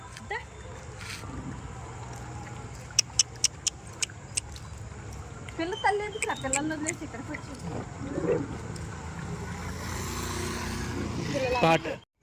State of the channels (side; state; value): both; identical; correlation 1.00